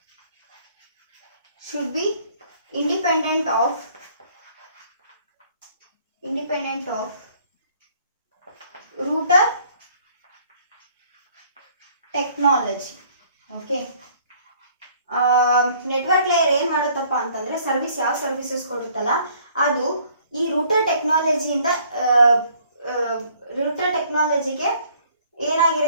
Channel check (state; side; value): inverted; both; correlation -0.60